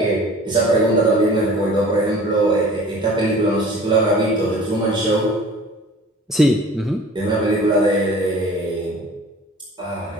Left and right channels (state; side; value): normal; both; correlation 0.46